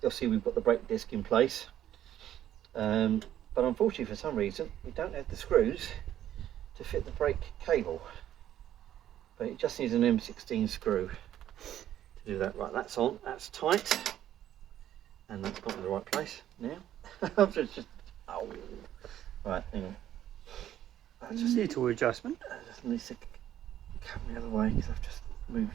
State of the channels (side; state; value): left; quieter; 11.6 dB